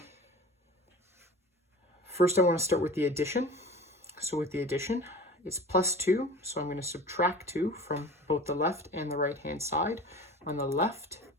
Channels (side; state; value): both; normal; correlation 0.39